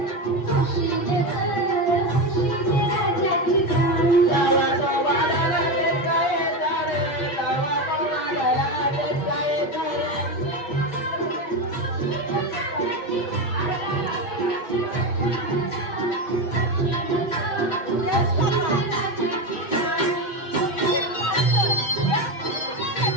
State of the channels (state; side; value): late; right; 6.1 ms